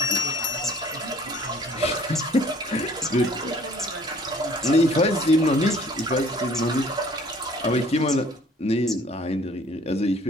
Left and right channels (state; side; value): normal; both; correlation 0.54